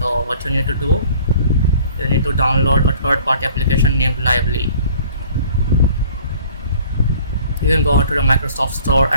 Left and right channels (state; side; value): inverted; both; correlation -0.53